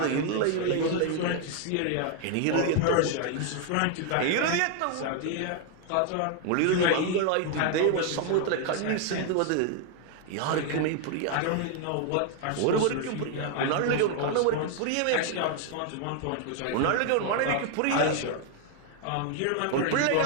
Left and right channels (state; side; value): different; both; correlation 0.00